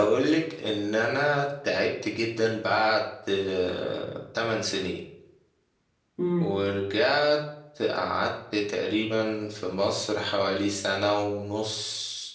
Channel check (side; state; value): both; identical; correlation 1.00